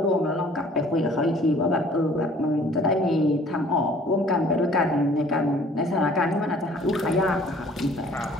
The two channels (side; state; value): both; normal; correlation 0.54